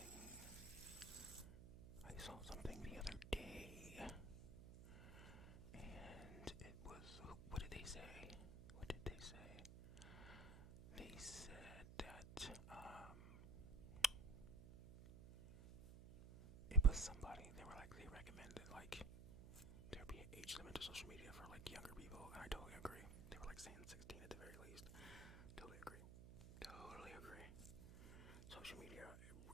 saw something the other day, and it was, what did they say? They said that, it was somebody, they recommended, like, there be an age limit to social media for, like, younger people, and I totally agree. They were, like, saying 16 at the very least. Totally agree. Social media,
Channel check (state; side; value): noise; right; hum, 12 dB below the sound